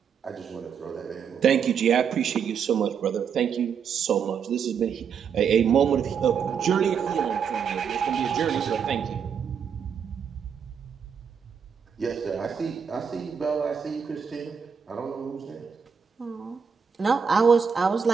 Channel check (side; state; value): left; quieter; 6.9 dB